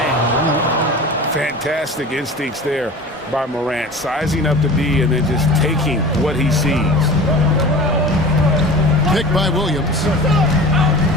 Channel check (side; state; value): both; normal; correlation 0.37